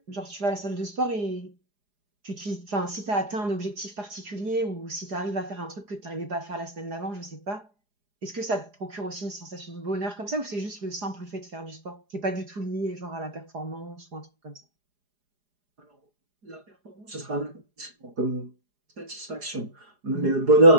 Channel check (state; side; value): late; left; 4.9 ms